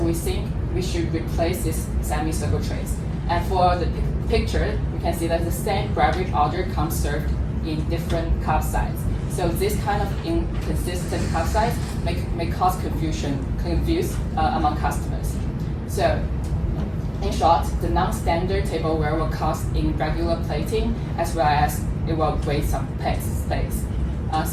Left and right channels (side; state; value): both; identical; correlation 1.00